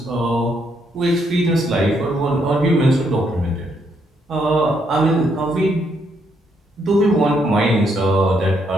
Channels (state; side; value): normal; both; correlation 0.74